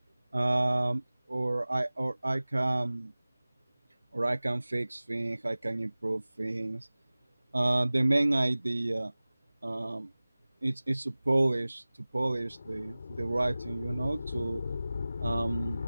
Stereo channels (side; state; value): both; inverted; correlation -0.98